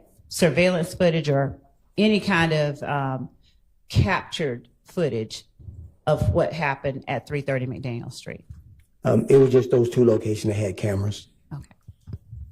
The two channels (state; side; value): identical; both; correlation 1.00